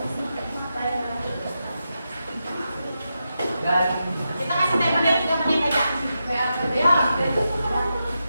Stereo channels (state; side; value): inverted; both; correlation -0.88